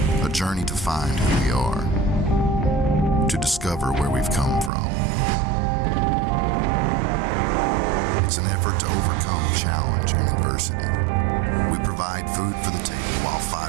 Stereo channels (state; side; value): drops out; left; at 4.7 s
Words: to find who we are, to discover where we've come from. It's an effort to overcome challenge and adversity. We provide food for the table while